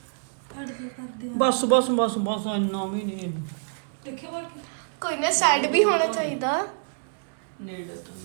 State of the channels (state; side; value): silent; left; digital silence